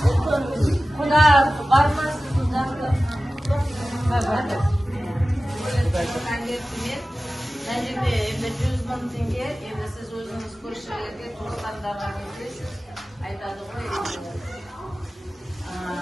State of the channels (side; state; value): both; normal; correlation 0.96